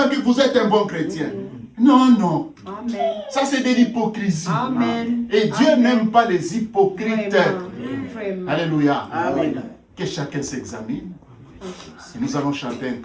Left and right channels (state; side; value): identical; both; correlation 1.00